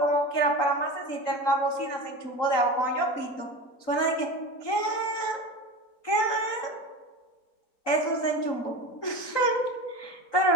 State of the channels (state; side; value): late; right; 3.9 ms